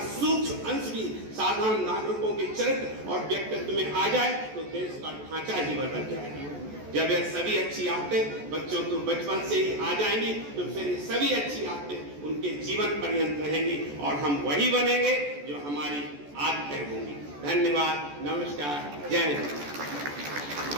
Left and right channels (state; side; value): late; left; 14 ms